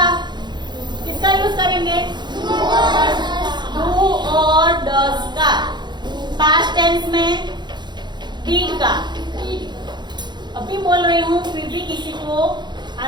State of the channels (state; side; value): late; left; 0.21 ms